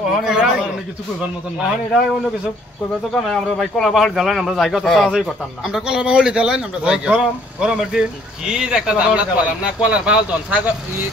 ওখানে কলার রাখ। বাহুল। অনেক কিছু কইবার মতন না এখন এটা অন্য কিছু কইবে তো কেন আমরা ভাই কলা বাহুল দিলাম আমরা জায়গা তো সাহায্য করতাম না আমরা কলার বাহুল দিলাম আমরা যাই গরম গরমের দিন কি একটা জামলা করলাম না কলার বাহাল দন ছাগল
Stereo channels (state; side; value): normal; both; correlation 0.61